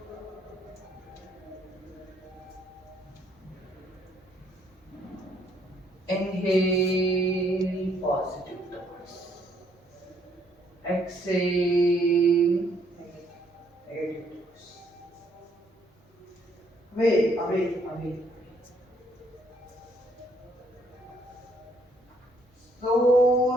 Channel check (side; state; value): both; normal; correlation 0.68